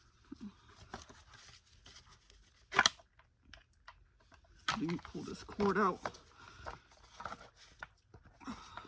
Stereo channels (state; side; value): identical; both; correlation 1.00